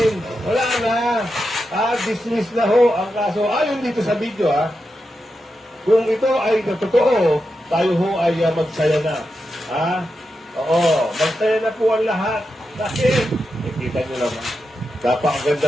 Wala na. Dismiss na ho ang kaso. Ayon dito sa video kung ito ay totoo, tayo ho ay magsaya na. Oo. Magsaya na po ang lahat. Bakit? Kita nyo naman.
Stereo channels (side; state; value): both; normal; correlation 0.88